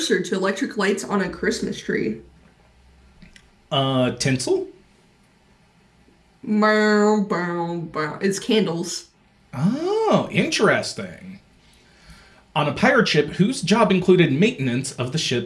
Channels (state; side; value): identical; both; correlation 1.00